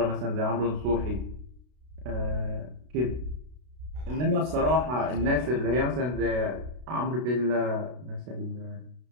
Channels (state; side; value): late; left; 32 ms